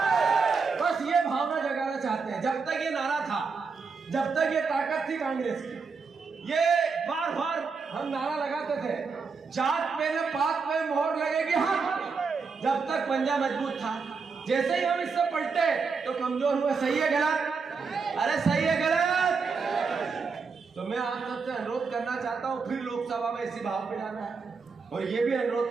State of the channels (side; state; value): left; quieter; 5.0 dB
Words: बस ये भावना जगाना चाहते हैं। जब तक ये नारा था, जब तक ये ताकत थी कांग्रेस की, ये बार बार हम नारा लगाते थे, जात पे न पात पे मोहर लगेगी हम, जब तक पंजा मजबूत था। जैसे ही हम इससे पलटे तो कमजोर हुए। सही है गलत? अरे सही है गलत? तो मैं आप सबसे अनुरोध करना चाहता हूं, फिर लोकसभा में इसी भाव पे जाना है, और ये भी